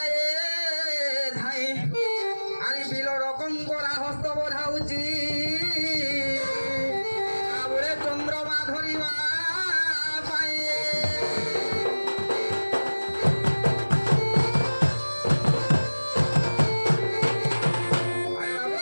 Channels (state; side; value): inverted; both; correlation -1.00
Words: ধাই আরে বিল রকম করা হস্ত বোঝাউছি আবুরে চন্দ্রমা ধরিবা পায়ে